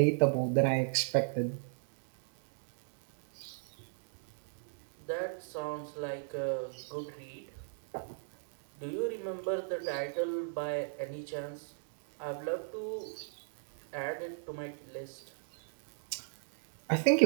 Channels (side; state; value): left; silent; digital silence